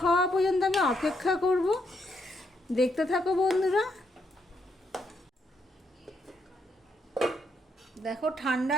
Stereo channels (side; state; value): both; normal; correlation 0.76